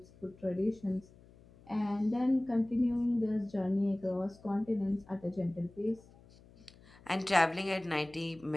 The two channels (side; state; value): left; noise; hum, 25 dB below the sound